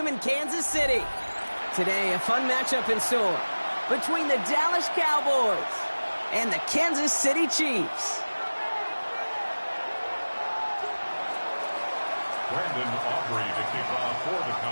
in Kansas City. Today, a fun matchup in store between the Dallas Cowboys and the Kansas City Chiefs. Brandon Aubrey to kick off for the Cowboys.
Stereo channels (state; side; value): inverted; both; correlation -1.00